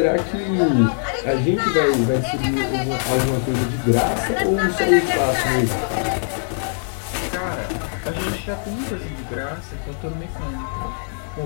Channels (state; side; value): silent; right; digital silence